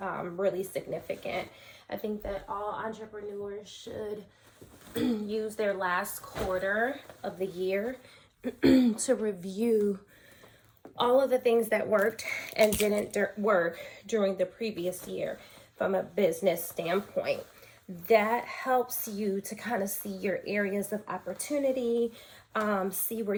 really significant. I think that all entrepreneurs should use their last quarter of the year to review all of the things that worked and didn't work during the previous year from a business standpoint. That helps you to kind of see your areas of opportunity, see where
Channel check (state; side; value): identical; both; correlation 1.00